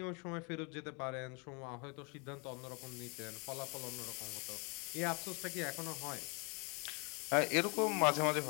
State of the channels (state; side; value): quieter; right; 31.8 dB